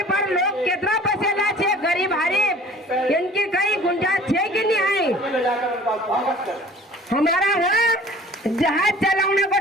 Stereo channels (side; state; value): both; normal; correlation 0.48